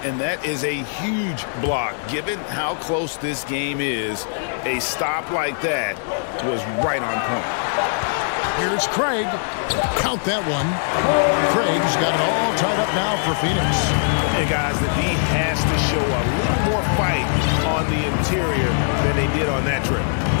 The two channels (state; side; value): silent; right; 57 dB below the other